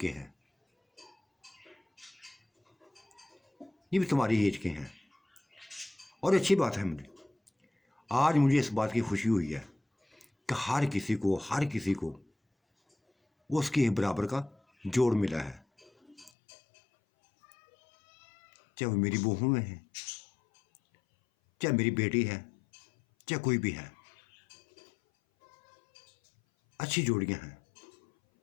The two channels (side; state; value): right; drops out; at 16.3 s